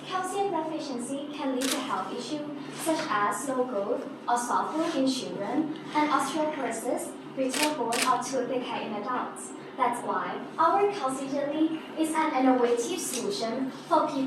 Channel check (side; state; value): both; identical; correlation 1.00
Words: deficiency can lead to health issues such as slow growth or soft bone in children and osteoporosis, brittle bone, or tooth decay in adults. That's why our calcium jelly is an innovative solution for